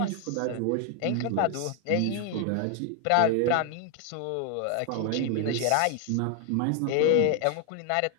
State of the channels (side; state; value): both; different; correlation 0.00